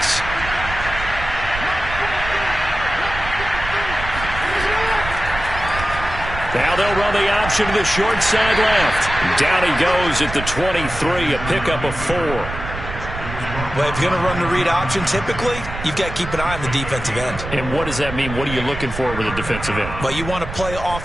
Now they'll run the option to the short side left. Down he goes at the 23, a pickup of 4. Well, if you're going to run the read option, typically, you've got to keep an eye on the defensive end. And what does that mean? What are you looking for with a defensive end? Well, you want to play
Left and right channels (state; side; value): noise; right; rumble, 8 dB below the sound